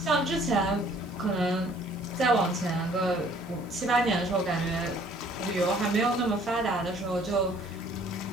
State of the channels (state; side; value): noise; right; hiss, 27 dB below the sound